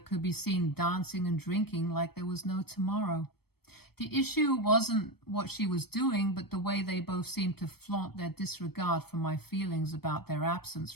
could be seen dancing and drinking like there was no tomorrow. The issue wasn't what she was doing, but the way they both seemed to flaunt their disregard for my feelings about their absence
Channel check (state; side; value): late; right; 0.96 ms